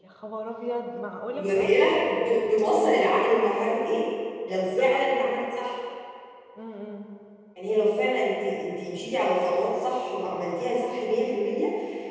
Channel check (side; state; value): both; identical; correlation 1.00